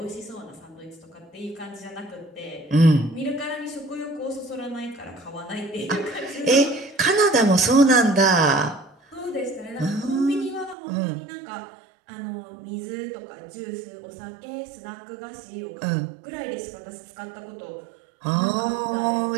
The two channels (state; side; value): drops out; left; at 10.8 s